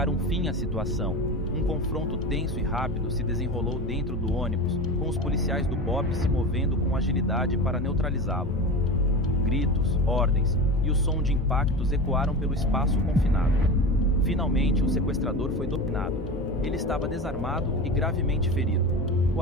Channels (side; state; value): both; normal; correlation 0.27